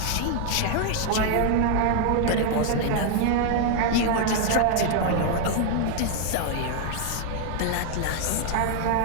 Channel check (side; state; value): both; different; correlation 0.00